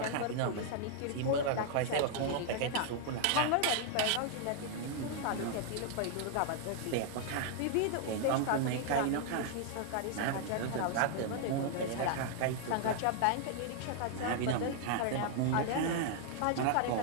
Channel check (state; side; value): different; both; correlation 0.00